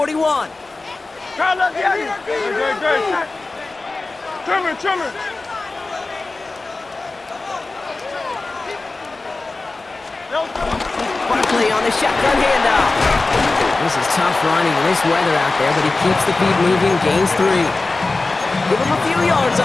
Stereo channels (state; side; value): quieter; right; 3.4 dB